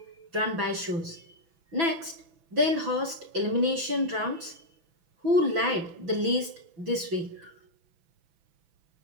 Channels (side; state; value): left; late; 6.0 ms